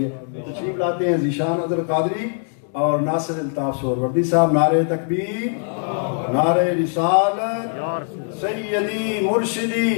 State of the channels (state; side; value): silent; right; 65 dB below the other